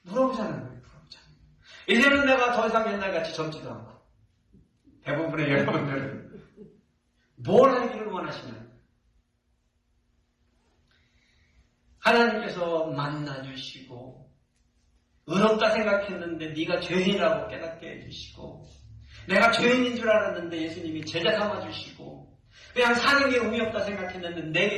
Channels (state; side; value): identical; both; correlation 1.00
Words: 물어보자는 거예요, 물어보자는 거예요. 이제는 내가 더 이상 옛날같이 젊지도 않고, 대부분의 여러분들은 뭘 하기를 원하시나요? 하나님께서 만나주시고, 의롭다 생각했는데 네가 죄인이라고 깨닫게 해주시고, 내가 죄인인 줄 알았는데 예수님이 제자 삼아주시고, 그냥 사는 게 의미 없다 생각했는데